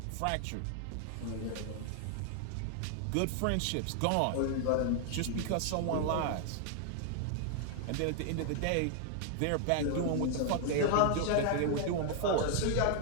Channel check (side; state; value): both; different; correlation 0.00